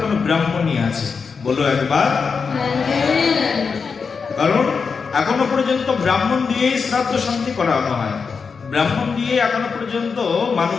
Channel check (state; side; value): quieter; right; 5.4 dB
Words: ব্রাহ্মণই আছে। বলো একবার। কারণ এখনো পর্যন্ত ব্রাহ্মণ দিয়েই শ্রাদ্ধ শান্তি করানো হয়, ব্রাহ্মণ দিয়ে এখনো পর্যন্ত